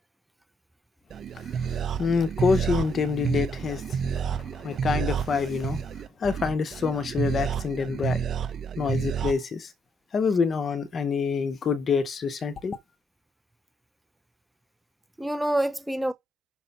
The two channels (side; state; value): both; normal; correlation 0.75